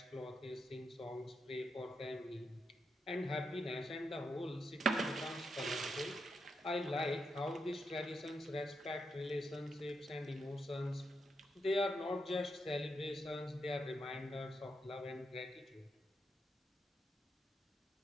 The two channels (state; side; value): normal; both; correlation 0.82